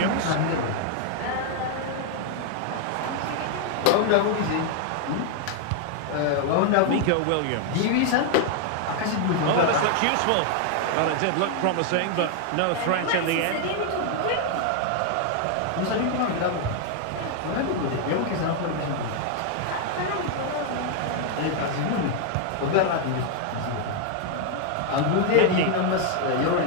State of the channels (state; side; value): different; both; correlation 0.00